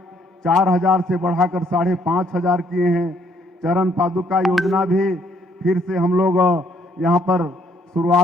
4,000 से बढ़ाकर 5,500 किए हैं। चरण पादुका योजना भी फिर से हम लोग यहाँ पर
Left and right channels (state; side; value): normal; both; correlation 0.67